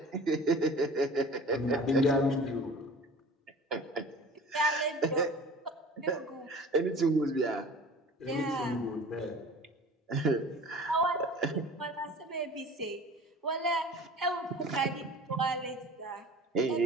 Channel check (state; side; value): normal; both; correlation 0.42